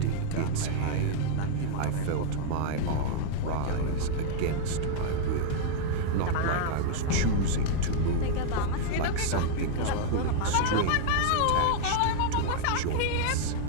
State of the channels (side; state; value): both; different; correlation 0.00